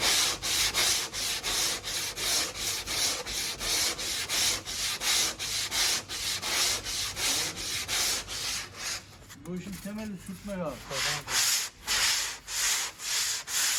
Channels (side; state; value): both; identical; correlation 1.00